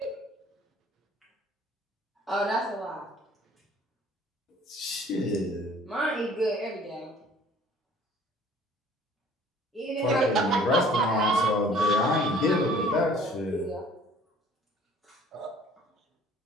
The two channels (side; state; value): both; normal; correlation 0.53